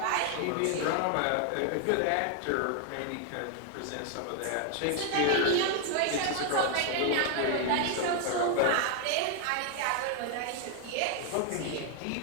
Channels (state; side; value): different; both; correlation 0.00